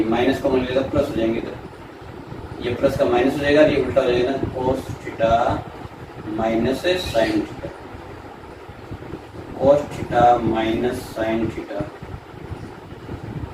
माइनस को मान लेगा प्लस हो जाएंगे, तो ये प्लस का माइनस हो जाएगा, ये उल्टा हो जाएगा cos theta minus sine theta cos theta minus sine theta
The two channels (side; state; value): both; identical; correlation 1.00